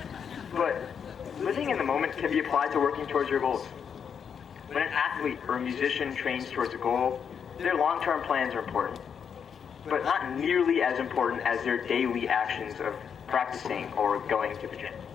But living in the moment can be applied to working towards your goals. When an athlete or a musician trains towards a goal, their long-term plans are important, but not nearly as important as their daily actions of practicing or going to the gym.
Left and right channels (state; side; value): quieter; right; 7.2 dB